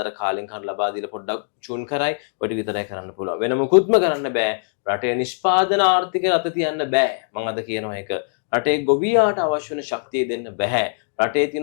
කාලෙන් කාල ලබා දීලා පොඩ්ඩක් චූන් කරයි ඔය ටික විතරයි කරන්න පුළුවන් වෙන මොකුත්ම කරන්න බෑ රටේ නිෂ්පාදන ආර්ථිකය රට තියන්න බෑ මම අද කියනවා ඒක රටේ ගොවියාට අවශ්‍ය වෙන ශක්තිය දෙන්න බෑ රටේ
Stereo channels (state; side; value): silent; right; 64 dB below the other